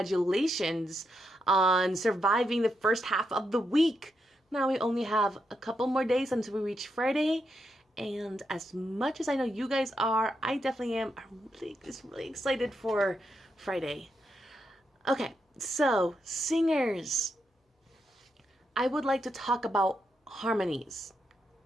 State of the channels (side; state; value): both; normal; correlation 0.82